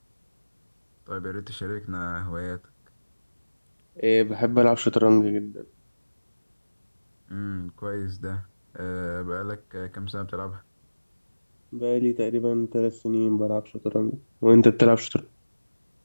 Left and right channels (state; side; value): inverted; both; correlation -1.00